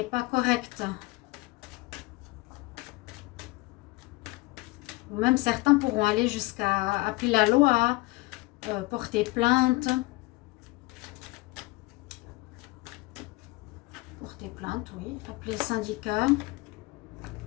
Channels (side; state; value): right; quieter; 21.9 dB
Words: pas correct. Ou même certains pourront aller jusqu'à appeler la loi, porter plainte. Porter plainte, oui. Appeler le syndicat.